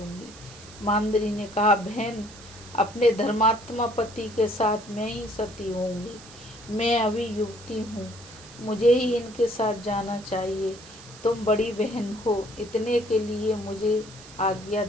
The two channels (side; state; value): right; noise; hiss, 19 dB below the sound